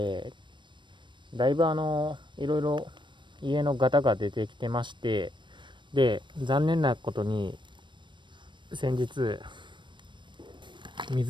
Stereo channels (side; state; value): left; late; 0.23 ms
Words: だいぶいろいろ家のガタが出てきてまして、で、残念なことに先日